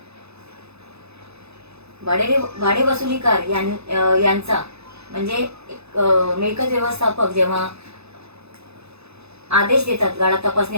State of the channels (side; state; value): left; late; 0.79 ms